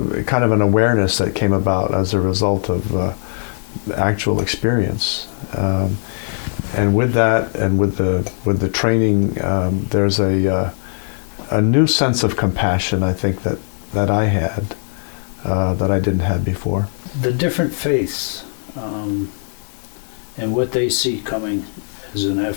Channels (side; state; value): right; silent; 56 dB below the other